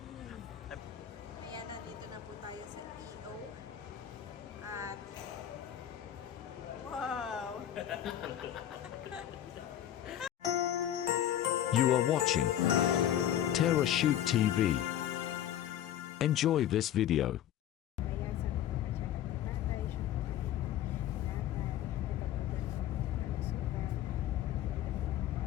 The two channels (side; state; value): right; quieter; 11.3 dB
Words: Ayan, nandito na po tayo sa EO. At wow! You are watching Terra Shoot TV. Enjoy this video.